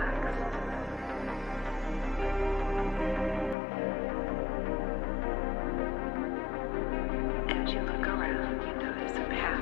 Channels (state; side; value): drops out; right; at 3.6 s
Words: As you look around, you notice a